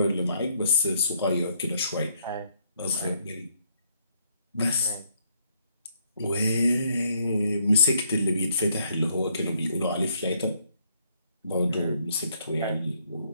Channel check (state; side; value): inverted; both; correlation -0.70